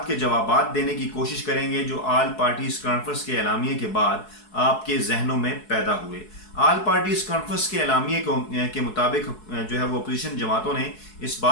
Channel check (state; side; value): late; right; 4.7 ms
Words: के जवाबात देने की कोशिश करेंगे जो आल पार्टीज कॉन्फ्रेंस के एलामिये के बाद आपके जहनों में पैदा हुए। आल पार्टीज कॉन्फ्रेंस के एलामिये के मुताबिक जो है वो अपोजिशन जमातों ने इस